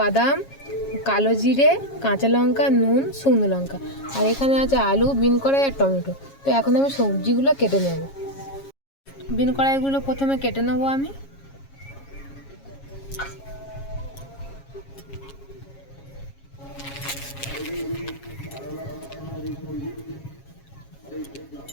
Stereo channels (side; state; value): right; late; 7.3 ms